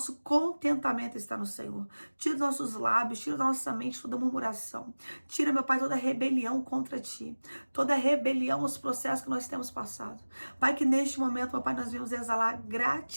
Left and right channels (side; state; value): both; inverted; correlation -1.00